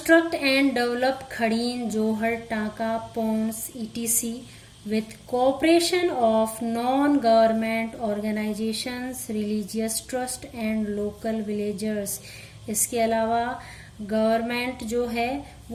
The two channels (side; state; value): both; identical; correlation 1.00